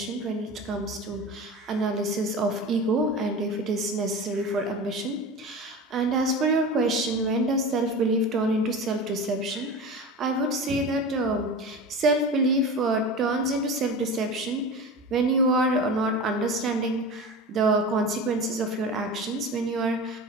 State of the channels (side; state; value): both; normal; correlation 0.31